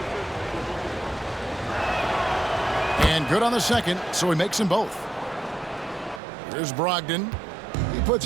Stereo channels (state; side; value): drops out; left; at 6.2 s